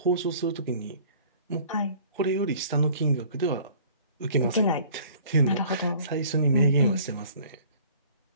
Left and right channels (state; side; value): inverted; both; correlation -0.51